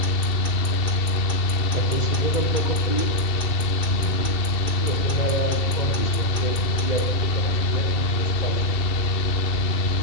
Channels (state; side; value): late; right; 2.7 ms